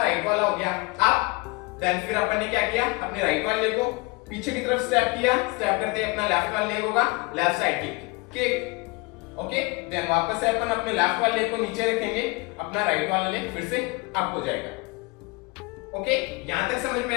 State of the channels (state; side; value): quieter; right; 26.6 dB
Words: राइट वाला हो गया अप, देन फिर अपन ने क्या किया, अपने राइट वाले लेग को पीछे की तरफ स्टेप किया, स्टेप करते अपना लेफ्ट वाला लेग होगा left side kick. Okay, then वापस से अपन अपने लेफ्ट वाले लेग को नीचे रखेंगे, अपना राइट वाला लेग फिर से अप हो जाएगा। ओके, यहां तक समझ में